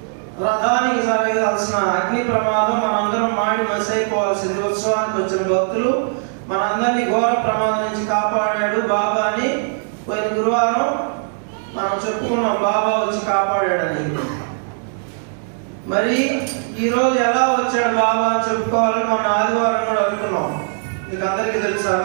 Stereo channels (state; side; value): silent; left; digital silence